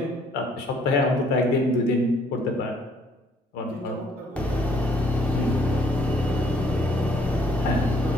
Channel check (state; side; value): normal; both; correlation 0.64